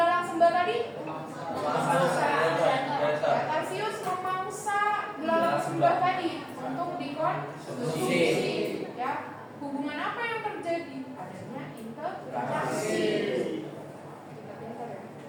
sembah tadi, ya, tarsius memangsa belalang sembah tadi untuk dikonsumsi. Ya, hubungan apa yang terjadi? Adanya interaksi.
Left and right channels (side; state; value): both; identical; correlation 1.00